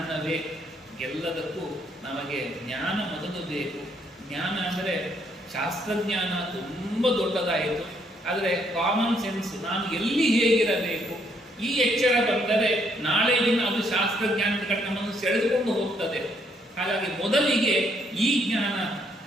ಎಲ್ಲದಕ್ಕೂ ನಮಗೆ ಜ್ಞಾನ ಮೊದಲು ಬೇಕು. ಜ್ಞಾನ ಅಂದರೆ ಶಾಸ್ತ್ರಜ್ಞಾನ ತುಂಬ ದೊಡ್ಡದಾಯಿತು, ಆದರೆ ಕಾಮನ್ ಸೆನ್ಸ್, ನಾನು ಎಲ್ಲಿ ಹೇಗಿರಬೇಕು, ಈ ಎಚ್ಚರ ಬಂದರೆ ನಾಳೆ ದಿನ ಅದು ಶಾಸ್ತ್ರಜ್ಞಾನದ ಕಡೆ ನಮ್ಮನ್ನು ಸೆಳೆದುಕೊಂಡು ಹೋಗ್ತದೆ. ಹಾಗಾಗಿ ಮೊದಲಿಗೆ ಈ ಜ್ಞಾನ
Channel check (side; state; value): both; normal; correlation 0.71